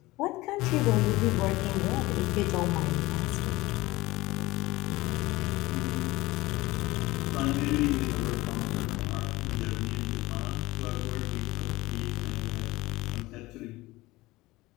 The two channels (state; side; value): quieter; right; 19.8 dB